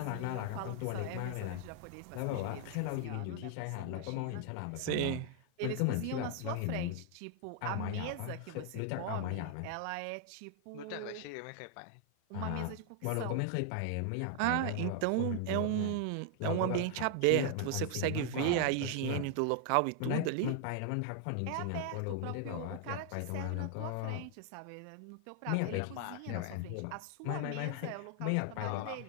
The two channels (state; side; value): different; both; correlation 0.00